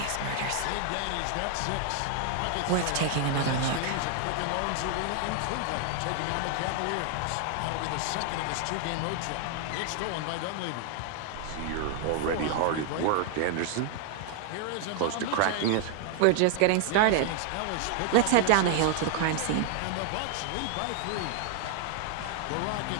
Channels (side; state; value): both; different; correlation 0.00